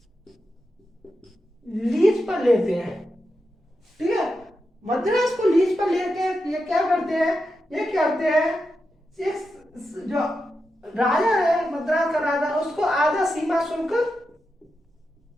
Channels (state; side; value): normal; both; correlation 0.88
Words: लीज पर लेते हैं। ठीक है, मद्रास को लीज पर लेके ये क्या करते हैं, जो राजा है मद्रास का राजा, उसको आधा सीमा शुल्क